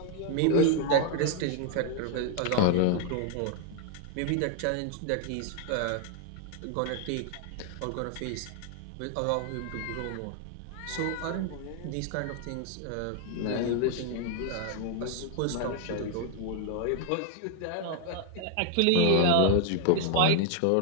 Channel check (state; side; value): different; both; correlation 0.00